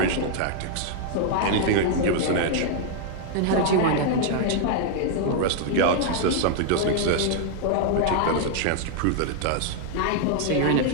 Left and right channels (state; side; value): different; both; correlation 0.00